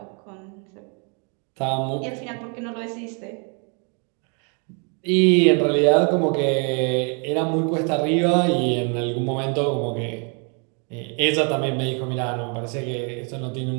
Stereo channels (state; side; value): quieter; left; 37.7 dB